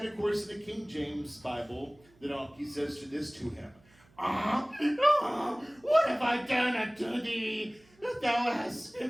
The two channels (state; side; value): noise; right; hum, 30 dB below the sound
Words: of course, in the King James Bible, the donkey says this to him. What have I done unto thee, that thou hast